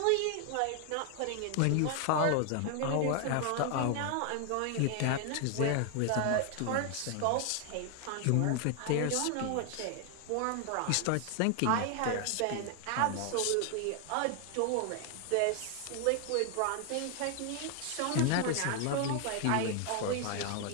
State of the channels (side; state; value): both; different; correlation 0.00